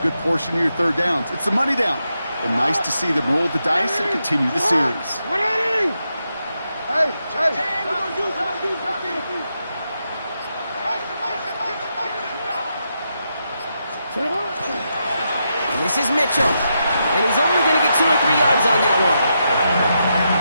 portion of your 3rd downs. It's the money down. And nice to see them roll the dice and continue the series. This is Mitchell. And he's only going to get 2 or 3 yards on that one.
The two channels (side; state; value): both; inverted; correlation -0.84